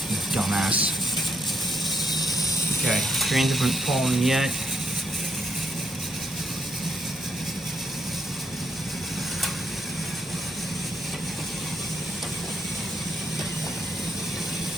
you dumbass. Okay, trains haven't fallen yet.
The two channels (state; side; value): normal; both; correlation 0.75